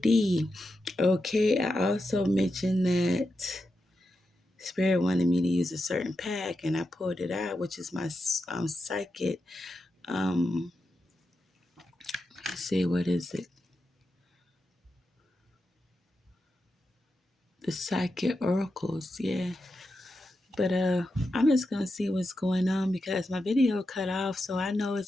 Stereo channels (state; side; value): normal; both; correlation 0.88